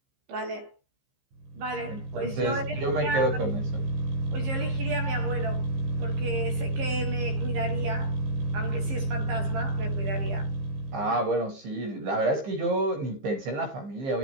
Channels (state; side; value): late; left; 15 ms